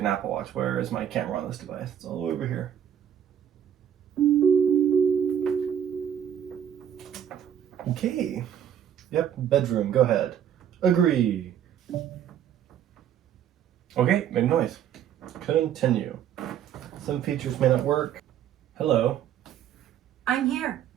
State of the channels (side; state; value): left; quieter; 9.6 dB